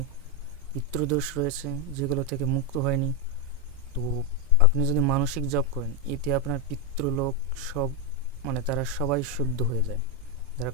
পিতৃদোষ রয়েছে যেগুলো থেকে মুক্ত হয়নি। তো আপনি যদি মানসিক জপ করেন, এতে আপনার পিতৃলোক সব তারা সবাই শুদ্ধ হয়ে যায়, যারা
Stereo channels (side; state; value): both; normal; correlation 0.05